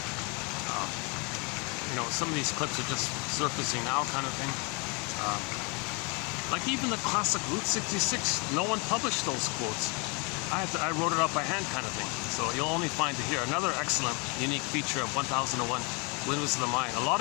Some of these clips are just surfacing now, kind of thing. Like even the classic Route 66, no one published those quotes. I wrote it up by hand, kind of thing. So you'll only find it here. Another excellent, unique feature of 1001 Windmills of the Mind. A lot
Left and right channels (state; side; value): quieter; right; 32.3 dB